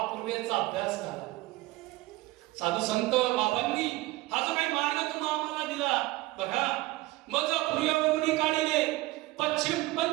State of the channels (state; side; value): quieter; left; 19.4 dB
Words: पूर्वेचा अभ्यास झाला. साधू संत बाबांनी हा जो काही मार्ग तुम्हा आम्हाला दिला बघा, मज पूर्वेवरून काढिले, पश्चिम